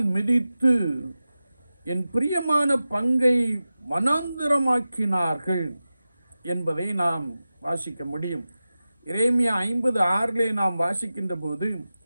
மிதித்து என் பிரியமான பங்கை வனாந்திரமாக்கினார்கள் என்பதை நாம் வாசிக்க முடியும். எரேமியா 50:6 நாம் வாசிக்கின்ற போது,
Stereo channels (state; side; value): inverted; both; correlation -0.94